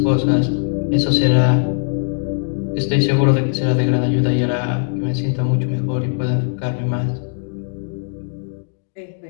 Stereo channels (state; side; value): silent; right; digital silence